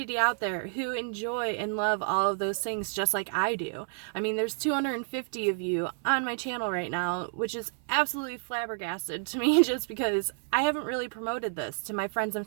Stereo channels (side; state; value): left; silent; 58 dB below the other